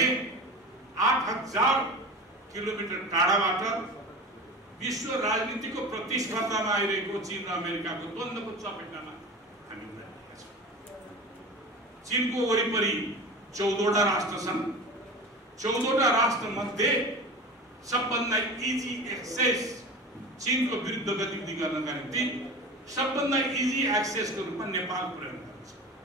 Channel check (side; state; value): both; normal; correlation 0.32